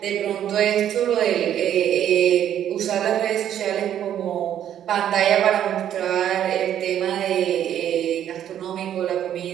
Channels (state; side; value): quieter; left; 10.5 dB